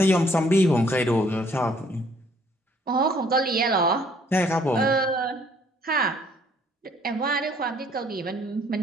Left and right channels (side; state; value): both; normal; correlation 0.62